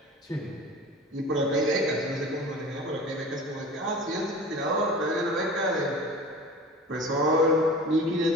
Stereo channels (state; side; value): normal; both; correlation 0.38